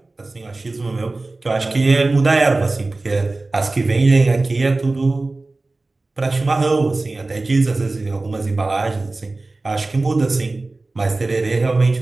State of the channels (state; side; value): quieter; left; 3.2 dB